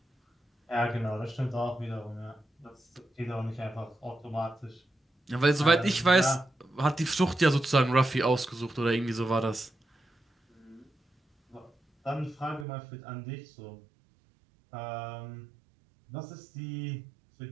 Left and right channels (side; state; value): left; drops out; at 12.7 s